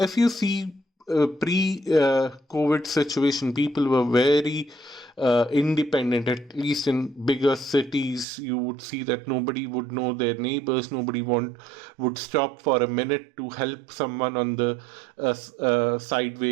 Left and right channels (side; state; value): left; drops out; at 8.2 s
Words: you see pre COVID situation, people were very independent. At least in bigger cities, you would see that nobody would know their neighbors. Nobody would stop for a minute to help someone on the